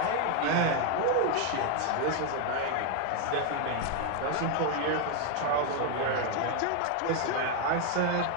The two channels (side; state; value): both; different; correlation 0.01